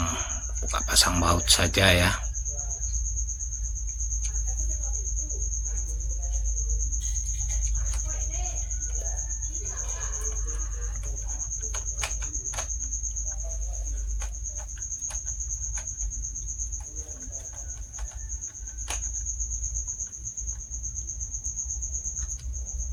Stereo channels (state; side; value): identical; both; correlation 1.00